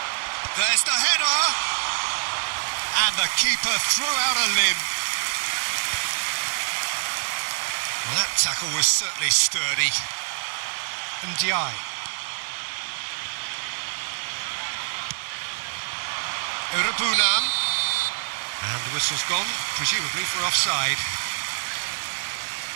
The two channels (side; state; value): left; silent; digital silence